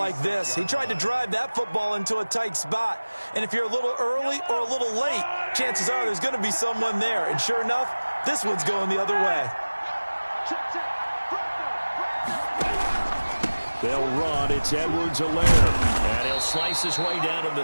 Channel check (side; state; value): both; inverted; correlation -1.00